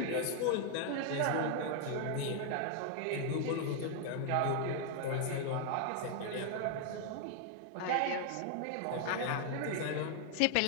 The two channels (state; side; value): different; both; correlation 0.00